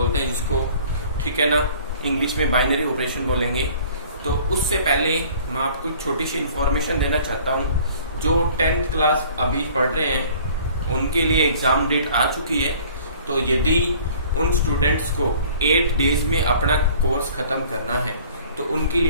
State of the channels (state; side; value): inverted; both; correlation -0.51